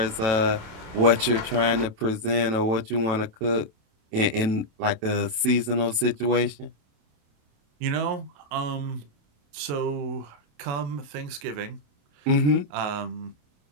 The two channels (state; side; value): late; left; 28 ms